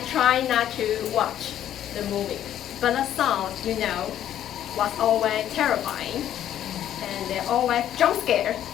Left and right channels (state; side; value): quieter; right; 11.1 dB